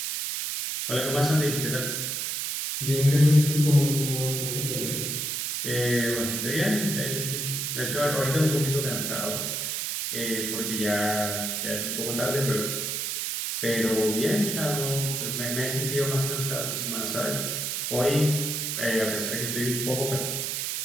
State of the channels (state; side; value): noise; right; hiss, 2 dB below the sound